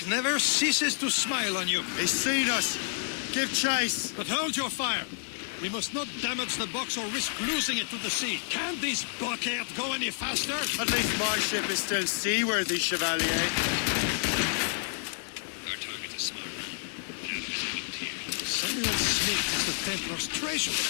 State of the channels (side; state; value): right; silent; digital silence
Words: never ceases to smile on you. He's seen us! Give chase! But hold your fire! We must not damage the box or risk losing it to the sea. Can't this blockade go any faster? At least my ship is still seaworthy, Chevalier. Our target's a smart man, but out of his element here. Samuel Smith is the Templar's treasure.